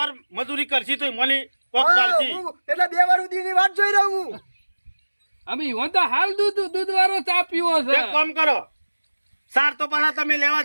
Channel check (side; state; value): both; inverted; correlation -1.00